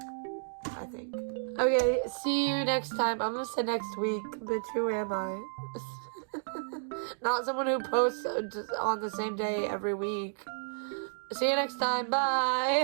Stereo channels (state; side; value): silent; left; digital silence